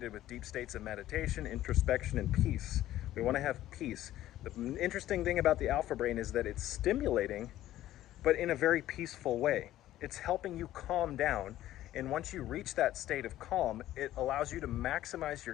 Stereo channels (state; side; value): quieter; right; 13.8 dB